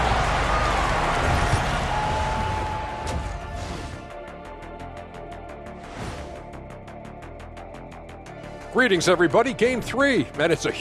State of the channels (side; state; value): both; identical; correlation 1.00